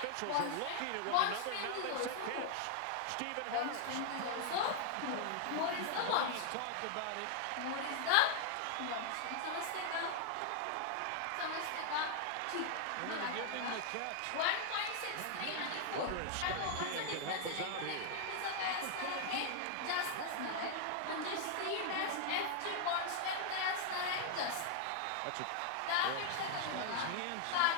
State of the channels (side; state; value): both; different; correlation 0.00